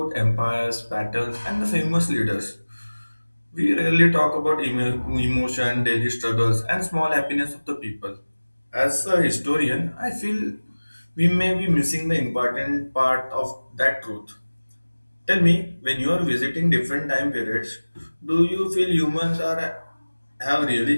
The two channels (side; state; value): both; inverted; correlation -1.00